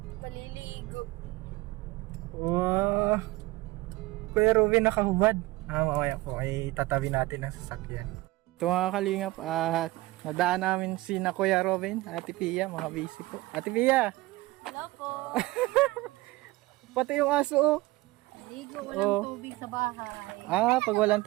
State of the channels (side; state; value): left; quieter; 20.2 dB